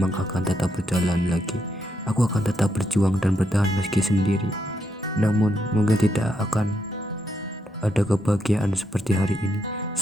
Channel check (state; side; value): normal; both; correlation 0.80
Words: akan tetap berjalan lagi. Aku akan tetap berjuang dan bertahan meski sendiri. Namun mungkin tidak akan ada kebahagiaan seperti hari ini